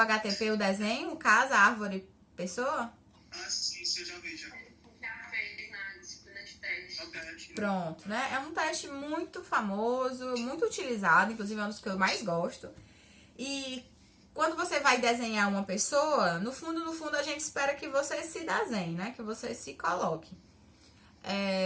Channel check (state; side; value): identical; both; correlation 1.00